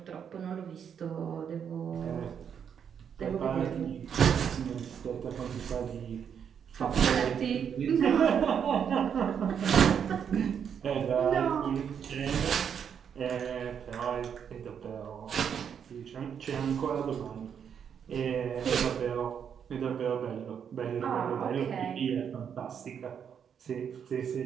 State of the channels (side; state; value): left; quieter; 7.8 dB